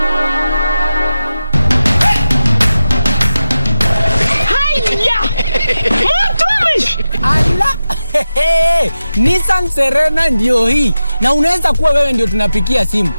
Nissan Serena ndio hii. Na unaweza kuwa wewe ndio tunapikia simu.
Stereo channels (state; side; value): inverted; both; correlation -0.92